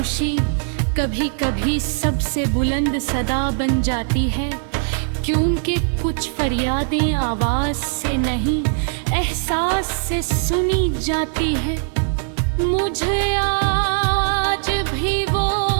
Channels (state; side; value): silent; left; digital silence